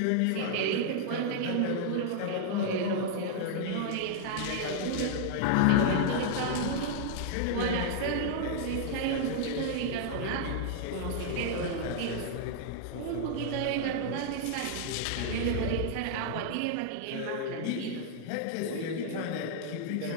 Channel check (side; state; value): both; different; correlation -0.01